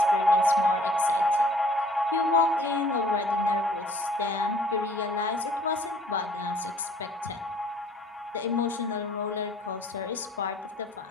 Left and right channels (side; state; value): both; normal; correlation 0.56